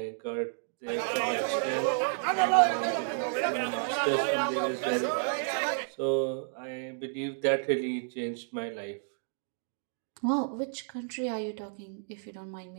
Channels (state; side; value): silent; left; digital silence